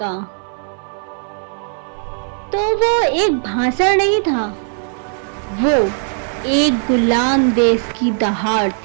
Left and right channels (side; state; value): left; silent; 62 dB below the other